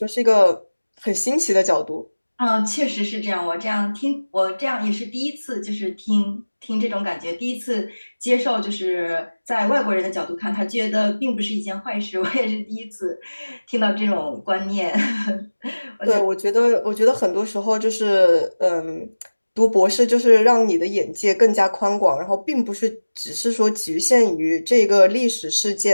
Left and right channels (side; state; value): both; inverted; correlation -1.00